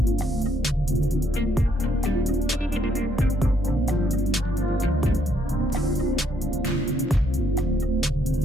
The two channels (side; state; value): both; normal; correlation 0.71